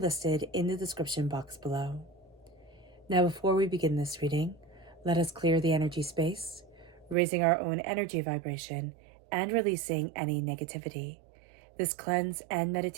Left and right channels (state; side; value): drops out; left; at 7.2 s